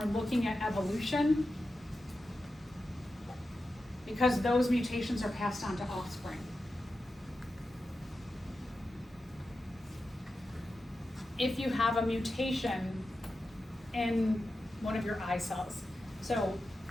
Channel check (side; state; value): both; normal; correlation 0.91